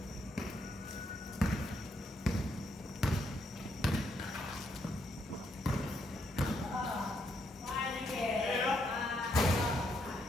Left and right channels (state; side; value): normal; both; correlation 0.76